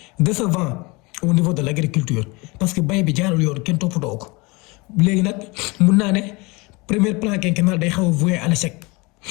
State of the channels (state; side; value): quieter; right; 25.7 dB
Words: décevant au niveau de l'agriculture parce que bay bi jaarul yoon kenn toppatoo ko léegi nag mun naa ne premier plan quinquennal day xaw a voué à l'échec